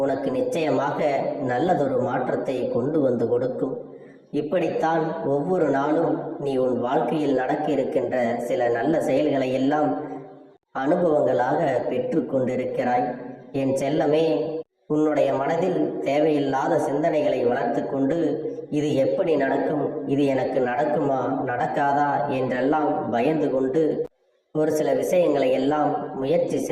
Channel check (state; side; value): identical; both; correlation 1.00